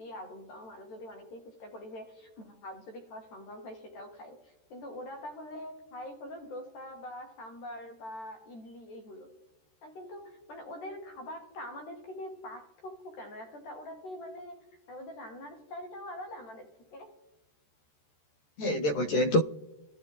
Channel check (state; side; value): late; right; 13 ms